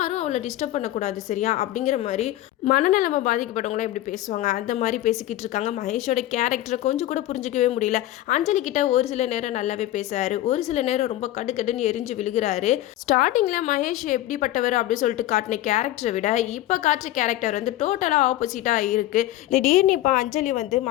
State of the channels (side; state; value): right; quieter; 14.8 dB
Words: அவளை டிஸ்டர்ப் பண்ணக்கூடாது சரியா அப்படிங்கிற மாதிரி மனநலமை பாதிக்கப்பட்டவங்களாம் எப்படி பேசுவாங்க அந்த மாதிரி பேசிக்கிட்டு இருக்காங்க. மகேஷோட கேரக்டரை கொஞ்சம் கூட புரிஞ்சிக்கவே முடியல. அஞ்சலி கிட்ட ஒரு சில நேரம் நல்லாவே பேசுறாரு, ஒரு சில நேரம் ரொம்ப கடுக்கடுன்னு எரிஞ்சு விழுகிறாரு. ஸ்டார்டிங்கில் மகேஷ் எப்படிப்பட்டவர் அப்படின்னு சொல்லிட்டு காட்டின கேரக்டரை விட இப்போ காட்டுற கேரக்டர் வந்து டோட்டலாக ஆப்போசிட்டாக இருக்குது. திடீர்னு இப்போ அஞ்சலி வந்து